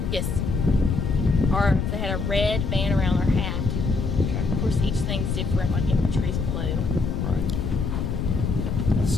Yes. Or if they had a red band around their hat. Okay. Of course, each thing's different, like infantry's blue. Right.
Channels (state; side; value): noise; left; rumble, 1 dB below the sound